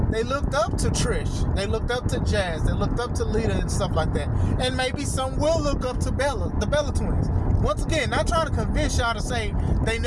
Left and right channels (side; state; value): both; identical; correlation 1.00